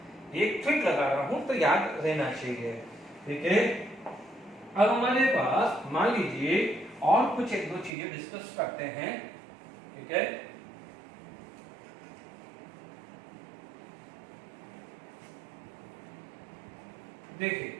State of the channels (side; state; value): left; drops out; at 7.9 s